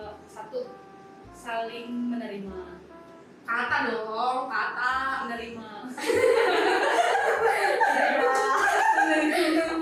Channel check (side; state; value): both; identical; correlation 1.00